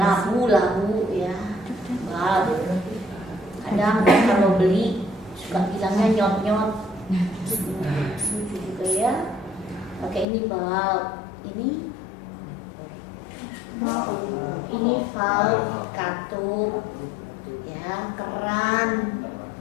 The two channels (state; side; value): drops out; right; at 10.2 s